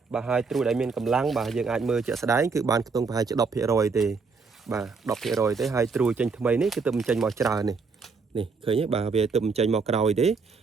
បាទហើយត្រួយដែលមានកម្លាំងបាទយើងអាចមើលជាក់ស្ដែងគឺបានខ្ទង់ប្រហែលជា 10% ទេបាទ 10% ទេហើយត្រួយចេញថ្មីនេះគឺទើបបញ្ចេញមកច្រើននេះឃើញទេបាទវាទើបបញ្ចេញមកក្រោយទេ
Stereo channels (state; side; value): quieter; left; 4.8 dB